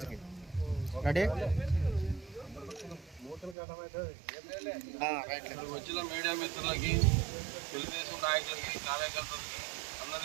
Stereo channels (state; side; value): drops out; left; at 3.6 s